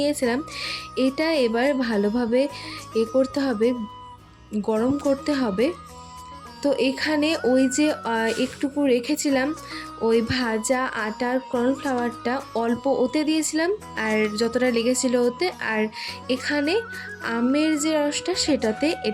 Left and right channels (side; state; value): both; identical; correlation 1.00